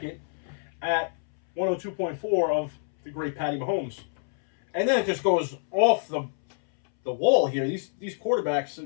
at 102.4 of the great Patty Mahomes. And then it just goes off the wall here. These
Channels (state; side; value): silent; right; 60 dB below the other